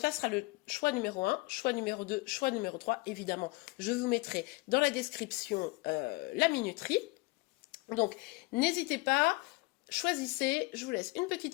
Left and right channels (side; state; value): right; quieter; 23.8 dB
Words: là sera le choix numéro 1, choix numéro 2, choix numéro 3. Évidemment, je vous mettrai dans la description la minuterie. Donc, n'hésitez pas, choisissez, je vous laisse une